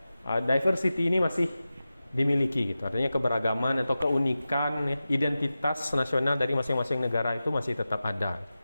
diversity ini masih dimiliki gitu. Artinya keberagaman atau keunikan ya, identitas nasional dari masing-masing negara itu masih tetap ada.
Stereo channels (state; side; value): inverted; both; correlation -0.94